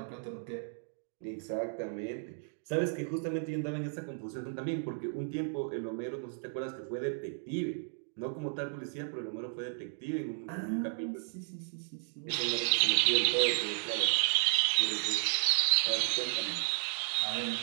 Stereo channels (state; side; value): silent; left; digital silence